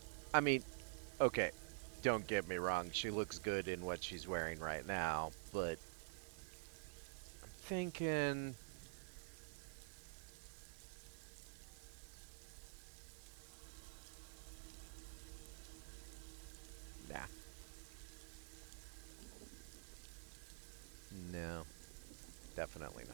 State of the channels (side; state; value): left; silent; digital silence